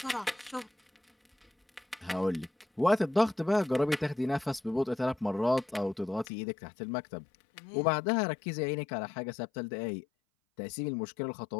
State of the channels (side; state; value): right; drops out; at 6.2 s